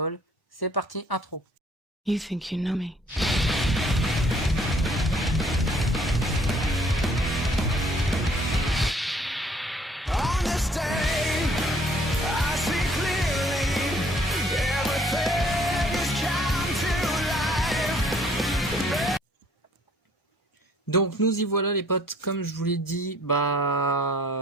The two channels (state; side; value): normal; both; correlation 0.59